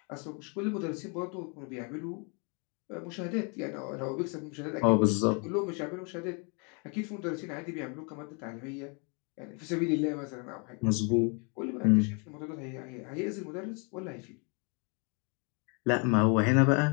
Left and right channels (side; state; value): right; quieter; 35.4 dB